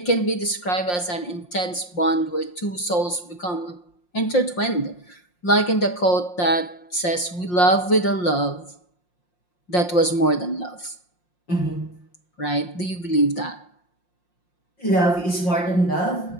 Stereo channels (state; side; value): late; right; 5.6 ms